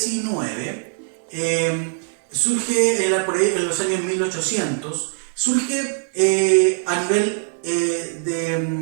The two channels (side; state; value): left; silent; 56 dB below the other